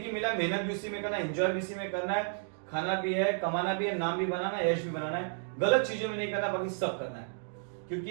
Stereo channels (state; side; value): silent; left; digital silence